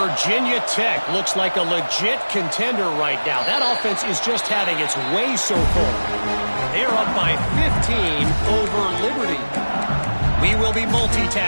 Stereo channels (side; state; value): both; inverted; correlation -1.00